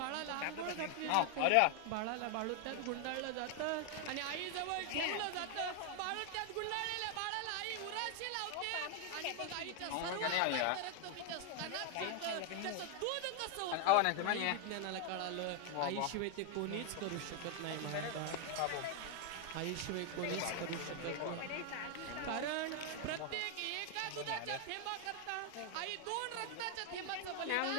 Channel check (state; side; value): different; both; correlation 0.00